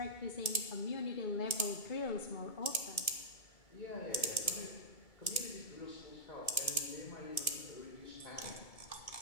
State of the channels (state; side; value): late; right; 2.2 ms